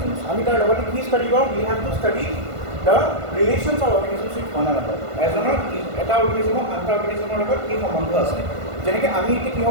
আমি তাৰ লগতে কি ষ্টাডি কৰোঁ we have to study the relations of organisms with one another. এজনৰ এটা অৰ্গেনিজমৰ আনটা অৰ্গেনিজমৰ লগত কি সম্বন্ধ আছে। যেনেকৈ আমি এতিয়া কিহৰ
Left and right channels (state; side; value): late; left; 1.5 ms